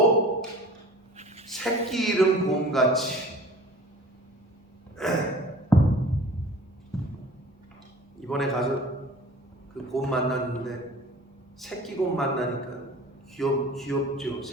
새끼 잃은 곰같이 이번에 가서 그 곰 만났는데 새끼 곰 만나니까 귀엽죠.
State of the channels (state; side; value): normal; both; correlation 0.44